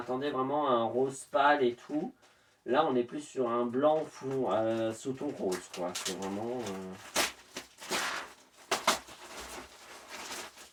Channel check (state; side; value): identical; both; correlation 1.00